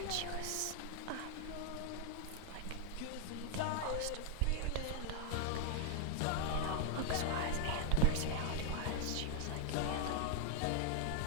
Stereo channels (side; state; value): both; different; correlation 0.00